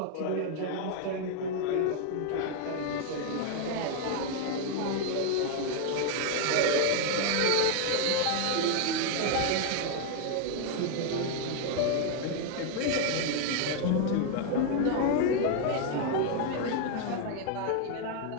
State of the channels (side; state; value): both; different; correlation 0.01